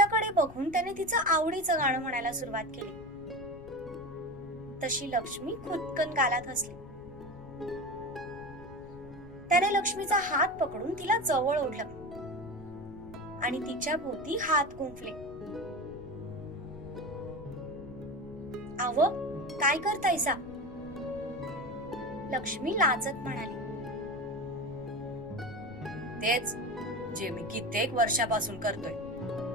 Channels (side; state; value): left; noise; rumble, 17 dB below the sound